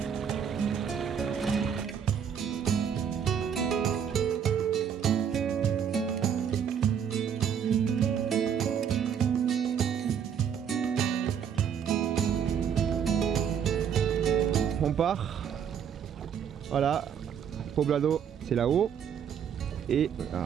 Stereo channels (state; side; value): quieter; left; 8.0 dB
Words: On part. Voilà, Poblado c'est là-haut. Et